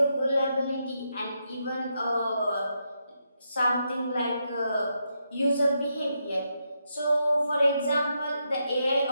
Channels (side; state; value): both; inverted; correlation -0.82